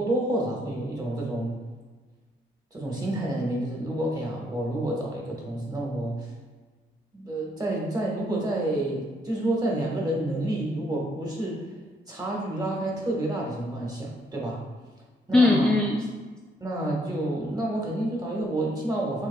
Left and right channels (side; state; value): both; normal; correlation 0.71